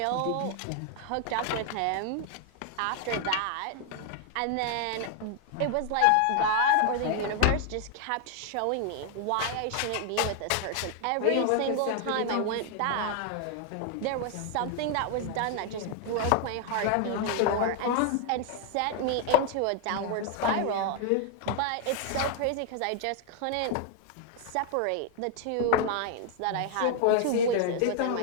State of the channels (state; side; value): different; both; correlation 0.00